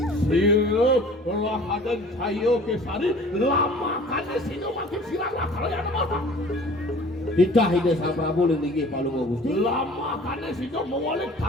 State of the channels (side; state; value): both; normal; correlation 0.47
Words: Sirah belah adan cayo kesari lama kan singa makin sirah karo yang mana? Ditah ide Sang Prabu linggih palung Gusti. Lama kane sida mawalik